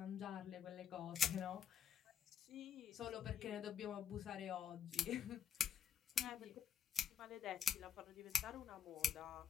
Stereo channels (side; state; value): right; quieter; 8.1 dB